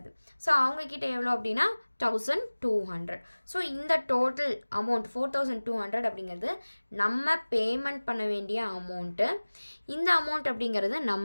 ஸோ அவங்கக்கிட்ட எவ்வளோ அப்படின்னா 1200. ஸோ இந்த டோட்டல் அமௌண்ட் 4200 அப்படிங்கிறது நம்ம பேமெண்ட் பண்ண வேண்டிய அமௌண்ட்டு. இந்த அமௌண்ட் அப்படிங்கிறது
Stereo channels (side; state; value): both; inverted; correlation -1.00